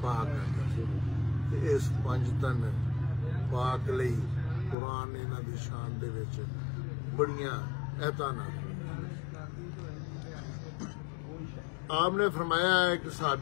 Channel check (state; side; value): drops out; right; at 4.8 s